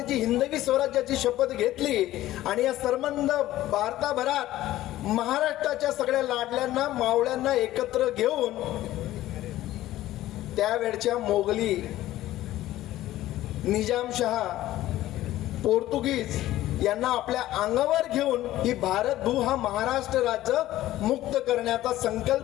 जी हिंदवी स्वराज्याची शपथ घेतली आणि या संबंध भारताभरात महाराष्ट्राच्या सगळ्या लाडल्यांना मावळ्यांना एकत्र घेऊन त्यावेळच्या मोगली, निजामशहा, पोर्तुगीज यांना आपल्या अंगावर घेऊन ही भारतभू हा महाराष्ट्र राज्य मुक्त करण्याचा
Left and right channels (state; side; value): quieter; right; 14.9 dB